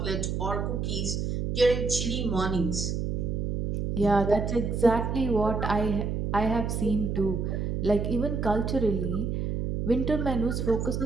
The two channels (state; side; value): noise; right; hum, 1 dB below the sound